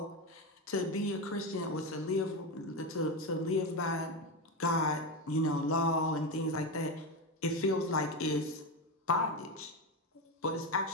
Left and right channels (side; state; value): both; normal; correlation 0.14